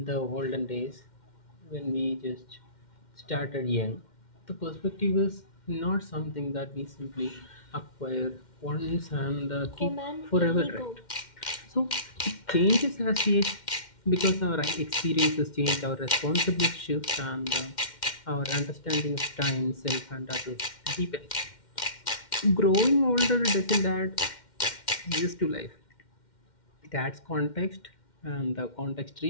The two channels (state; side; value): late; right; 2.1 ms